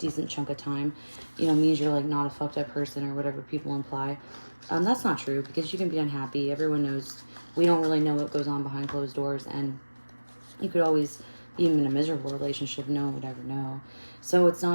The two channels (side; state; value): both; inverted; correlation -1.00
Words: chunk of time, means you're, like, not a fucked up person or whatever people imply. That's not true, because you can be unhappy. Everyone knows. We don't really know what goes on behind closed doors, and you could always, even in a miserable relationship, no one would ever know. So it's